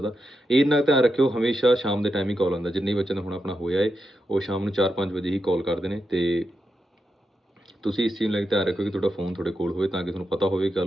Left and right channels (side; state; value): both; normal; correlation 0.86